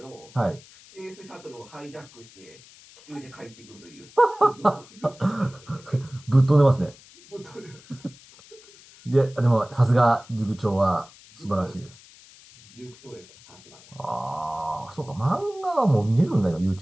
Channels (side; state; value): left; noise; hiss, 23 dB below the sound